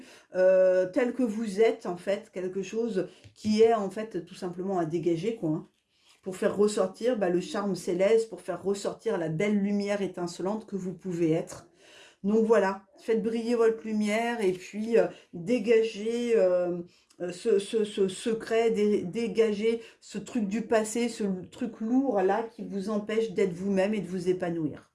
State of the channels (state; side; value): identical; both; correlation 1.00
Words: tel que vous êtes, en fait, quelque chose qui est, en fait, tout simplement à dégager, quoi, hein, pour faire ressortir le charme céleste, pour faire ressortir la belle lumière étincelante que vous pouvez être. Donc voilà, faites briller votre lumière et puis dégagez ce secret, dégagez ce truc du passé, ce truc lourd là qui vous empêche d'être vous-même et de vous épanouir.